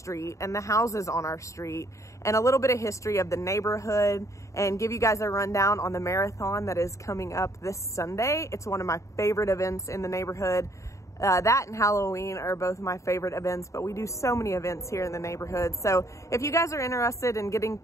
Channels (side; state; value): right; late; 0.15 ms